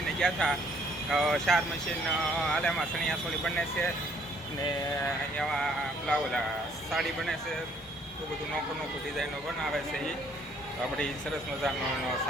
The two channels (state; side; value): normal; both; correlation 0.63